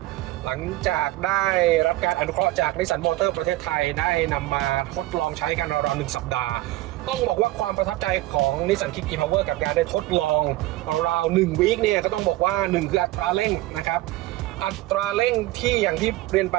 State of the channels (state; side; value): quieter; left; 17.3 dB